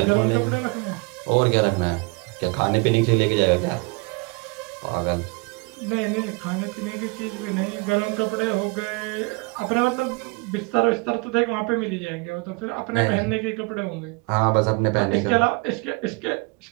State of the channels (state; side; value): quieter; left; 29.5 dB